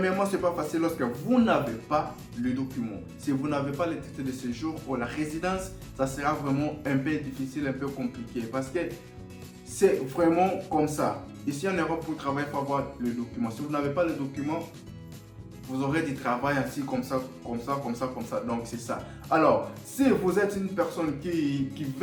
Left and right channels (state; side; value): identical; both; correlation 1.00